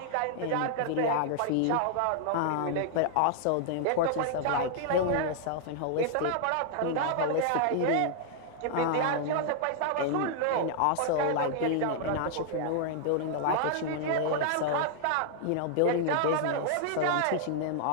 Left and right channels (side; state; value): both; different; correlation -0.01